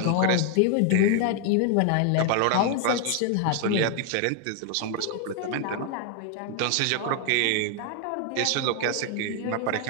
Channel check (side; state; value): both; different; correlation 0.00